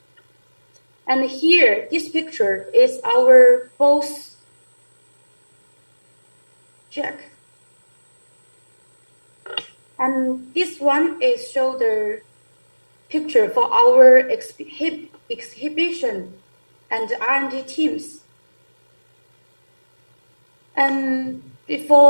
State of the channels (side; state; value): both; inverted; correlation -1.00